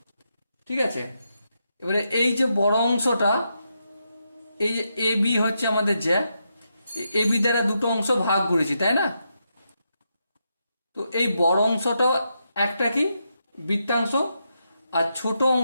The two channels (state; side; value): inverted; both; correlation -0.83